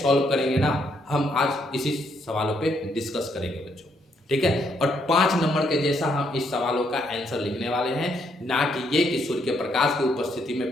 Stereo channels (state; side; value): normal; both; correlation 0.73